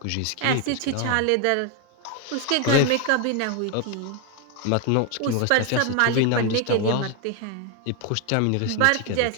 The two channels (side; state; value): both; different; correlation 0.01